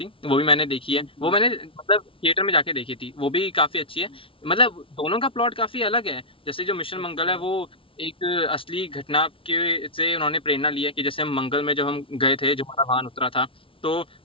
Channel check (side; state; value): right; late; 0.26 ms